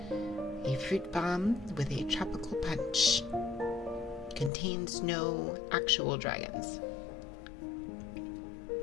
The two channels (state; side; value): drops out; right; at 4.5 s